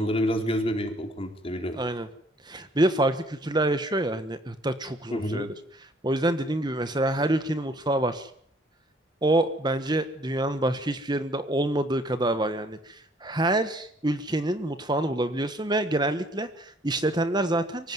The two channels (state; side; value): normal; both; correlation 0.61